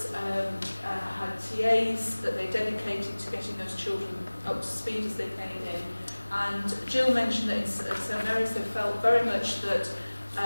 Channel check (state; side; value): inverted; both; correlation -1.00